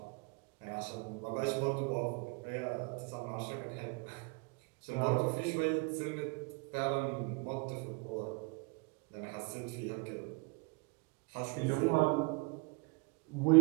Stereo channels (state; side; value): quieter; left; 30.9 dB